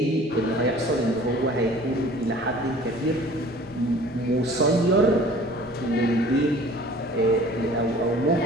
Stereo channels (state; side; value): normal; both; correlation 0.48